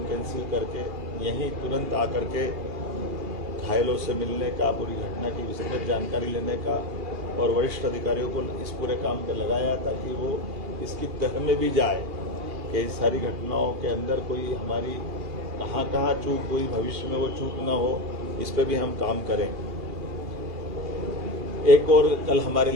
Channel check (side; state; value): left; late; 2.7 ms